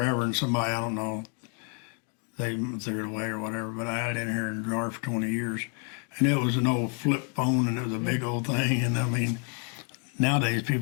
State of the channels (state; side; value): quieter; right; 39.9 dB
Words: and somebody, I don't know, they threw it away or whatever, but I had it in here in a drawer for 20 years. And it was an old flip phone, and it was a big old thing. And I mean, nowadays